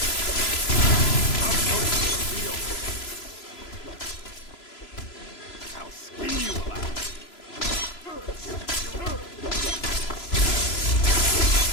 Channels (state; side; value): late; right; 3.0 ms